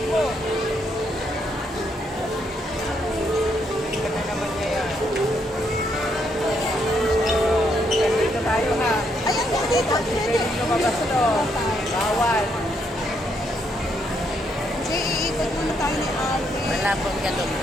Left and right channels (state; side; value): normal; both; correlation 0.75